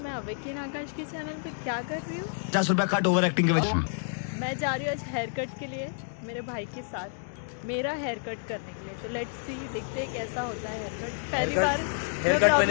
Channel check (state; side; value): silent; right; digital silence